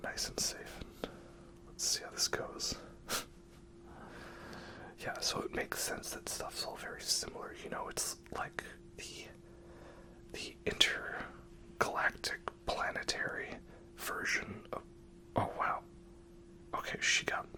nice and safe, and let's see how this goes. Yeah, so it makes sense that stuff's all very similar, you know, it's like the intergalactic planetary version of, oh wow, okay, she got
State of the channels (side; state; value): both; identical; correlation 1.00